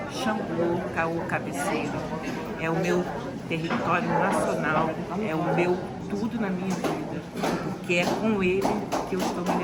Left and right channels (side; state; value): both; identical; correlation 1.00